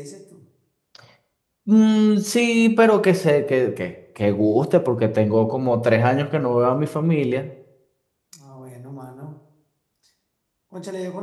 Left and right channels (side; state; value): both; identical; correlation 1.00